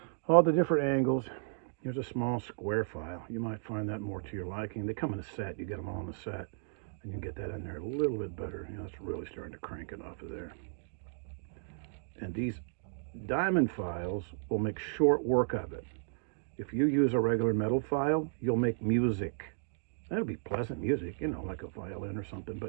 angles. Here's a small square file. You might find that more to your liking. They come in a set. You get them all in a set, and you get that in there a little bit better. It's really starting to crank it off of there. And these diamond files will make short work of it. If you use a regular metal file, you'll make music. That'll be pleasant music, like a violin or something,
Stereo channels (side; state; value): left; silent; digital silence